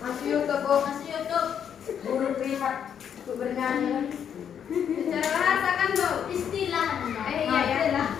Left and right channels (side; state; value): right; quieter; 8.4 dB